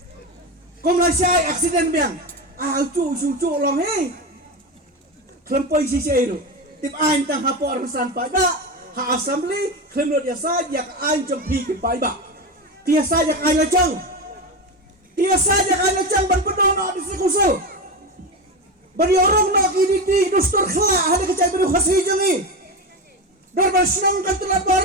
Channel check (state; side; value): normal; both; correlation 0.19